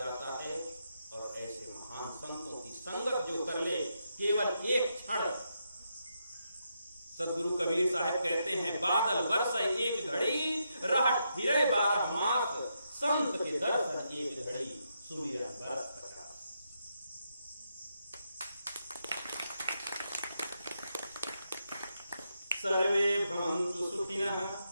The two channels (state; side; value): inverted; both; correlation -0.82